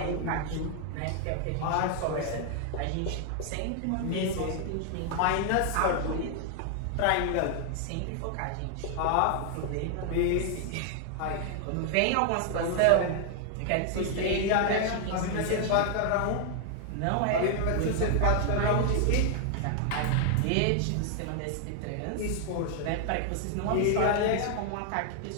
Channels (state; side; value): different; both; correlation 0.00